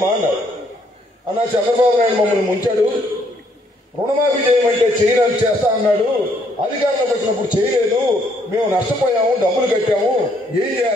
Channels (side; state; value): both; normal; correlation 0.69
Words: అన్నారు. అన్నా చంద్రబాబు నాయుడు మమ్మల్ని ముంచాడు, రుణమాఫీ చేయమంటే చేయడానికి చేస్తా అన్నాడు, అధికారంలోకి వచ్చినప్పుడు చేయలేదు, మేము నష్టపోయాము, డబ్బులు కట్టాము, ఏం